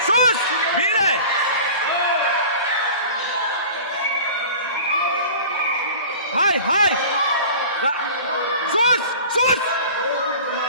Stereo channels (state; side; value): inverted; both; correlation -0.40